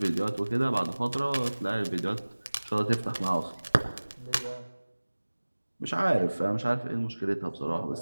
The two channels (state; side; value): inverted; both; correlation -1.00